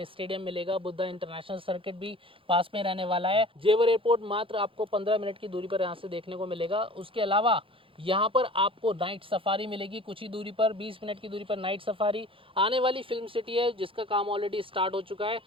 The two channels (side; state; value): left; late; 0.26 ms